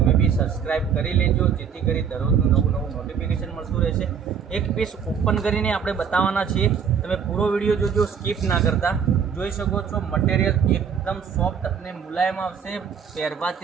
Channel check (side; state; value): left; quieter; 7.1 dB